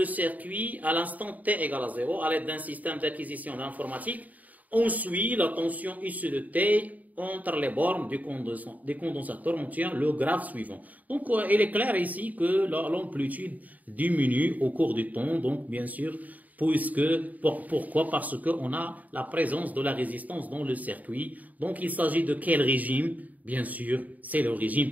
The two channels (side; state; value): left; late; 0.076 ms